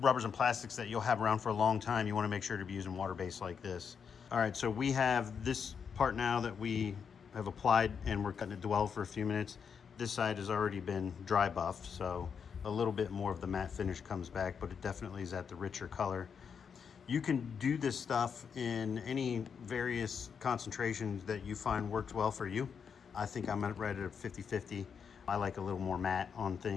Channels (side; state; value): right; quieter; 6.7 dB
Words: and plastics that you'll have around for a long time, you want to make sure to be using water-based like this. All right, so we have this part now that we have applied and we're cutting it dwell for a few minutes. This side has already been dry buffed, so a little bit more of the matte finish comes back, but it definitely is at the richer color. You can do this stuff in any various concentrations that you find works well for you. I think I'm right at 50/50. I like a little more matte on